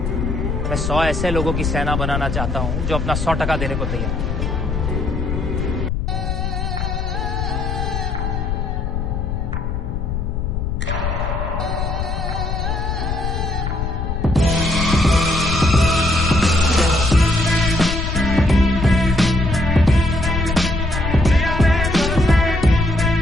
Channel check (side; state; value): left; noise; rumble, 2 dB below the sound